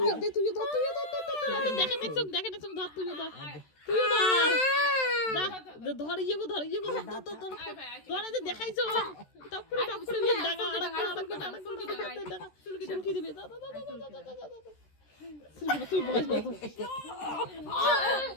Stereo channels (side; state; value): right; late; 13 ms